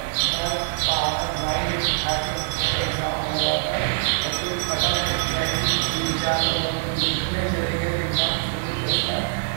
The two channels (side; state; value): left; silent; digital silence